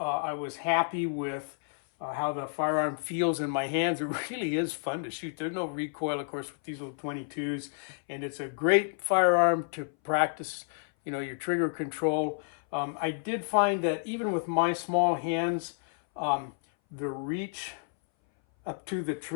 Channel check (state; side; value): silent; right; 58 dB below the other